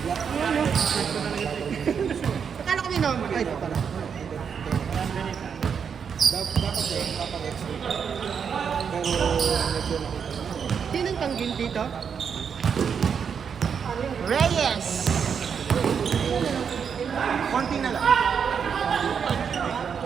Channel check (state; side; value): quieter; left; 6.9 dB